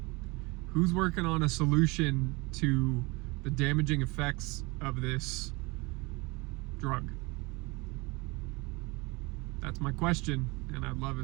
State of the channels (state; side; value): quieter; left; 25.7 dB